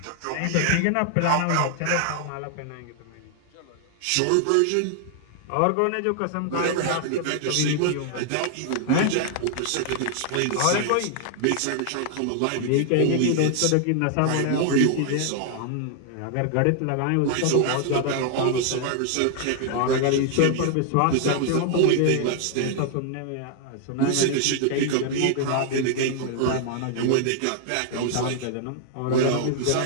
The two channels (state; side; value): different; both; correlation 0.00